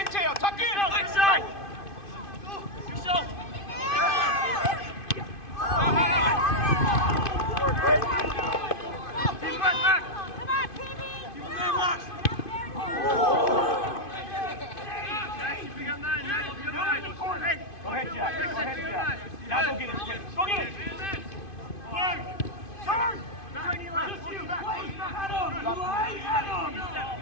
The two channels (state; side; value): late; right; 2.5 ms